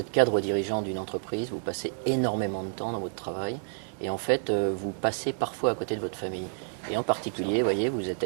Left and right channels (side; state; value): left; silent; digital silence